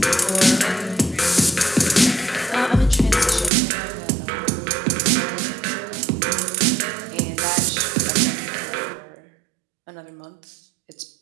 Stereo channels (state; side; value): drops out; left; at 3.5 s